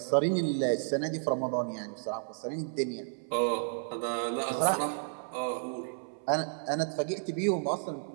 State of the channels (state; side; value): silent; left; 56 dB below the other